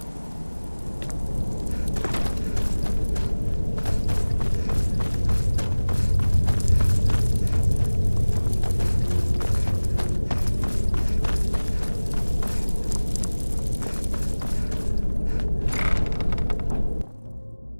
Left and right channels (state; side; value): inverted; both; correlation -1.00